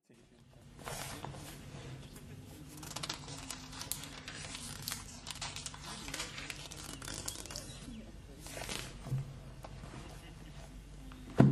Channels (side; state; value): both; identical; correlation 1.00